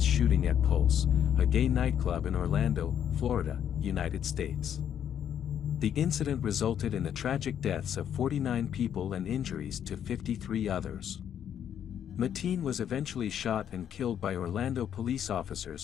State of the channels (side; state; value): right; quieter; 9.3 dB